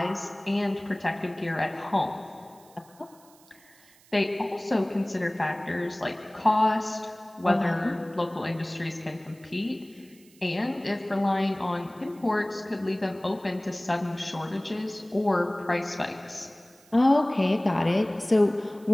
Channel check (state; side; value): noise; right; hiss, 27 dB below the sound